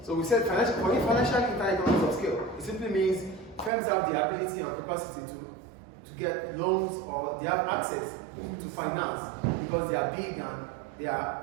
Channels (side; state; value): left; drops out; at 3.7 s